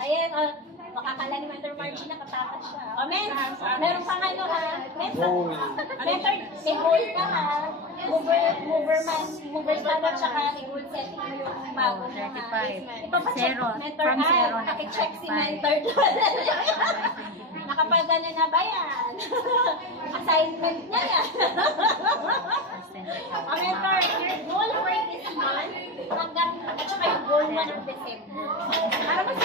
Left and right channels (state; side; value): normal; both; correlation 0.20